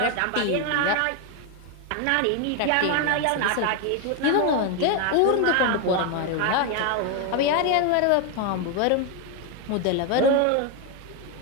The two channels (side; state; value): both; different; correlation 0.01